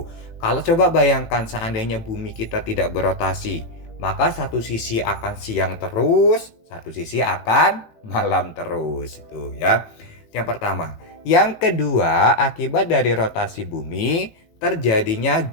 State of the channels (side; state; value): right; late; 18 ms